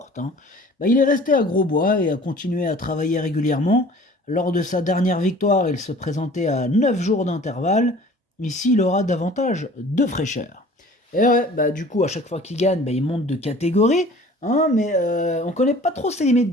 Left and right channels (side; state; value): both; normal; correlation 0.47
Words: Il est resté à Grosbois et a continué à travailler régulièrement. Lors de sa dernière victoire, il se présentait à 9 jours d'intervalle. Ici, il aura davantage de fraîcheur. Et ouais, du coup, à chaque fois qu'il gagne, il monte de catégorie, mais on connaît pas trop ses limites,